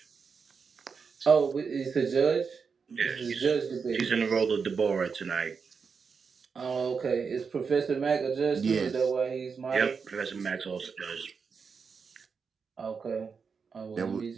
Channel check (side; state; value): left; quieter; 5.6 dB